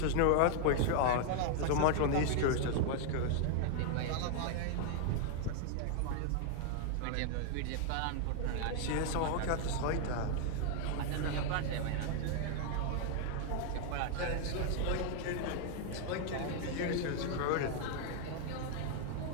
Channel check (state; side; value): different; both; correlation 0.00